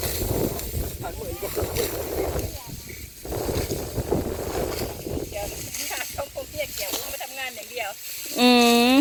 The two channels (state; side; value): identical; both; correlation 1.00